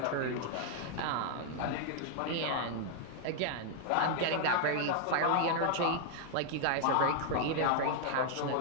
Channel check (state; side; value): different; both; correlation 0.00